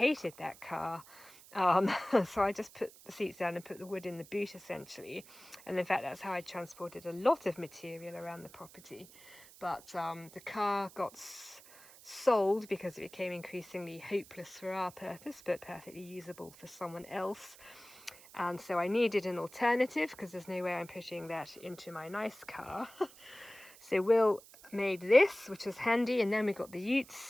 that car. So I just put the seats down and put the wood in the boot essentially, and in fact that's how I transported a lot of material around the property. But the car got sold because it became increasingly hopeless for our purpose but perfectly usable for someone else, and so I needed an alternative because there's no way I'm pushing that into my nice car. So Will made this, which was handy, and then we got the utes,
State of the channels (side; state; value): right; noise; hiss, 21 dB below the sound